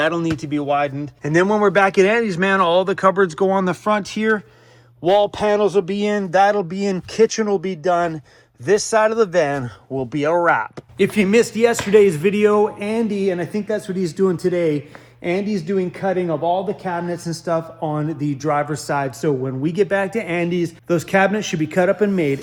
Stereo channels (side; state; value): both; identical; correlation 1.00